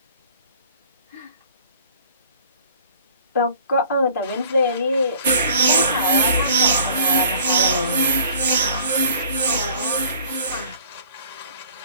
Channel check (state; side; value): inverted; both; correlation -0.51